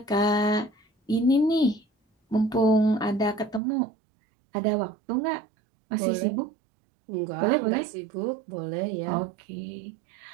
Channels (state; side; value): drops out; left; at 3.6 s